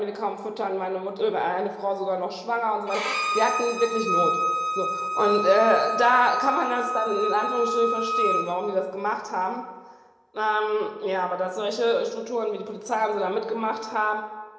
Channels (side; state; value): both; identical; correlation 1.00